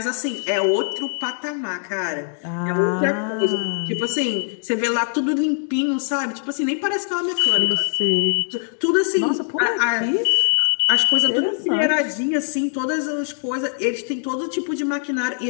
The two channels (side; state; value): right; silent; digital silence